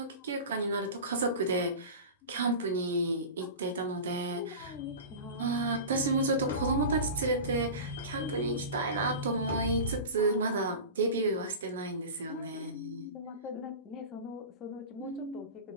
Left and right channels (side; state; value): both; inverted; correlation -0.31